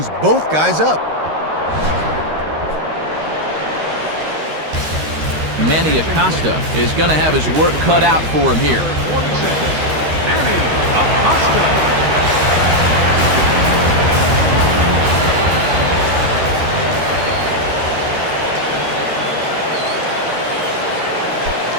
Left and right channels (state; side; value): late; left; 13 ms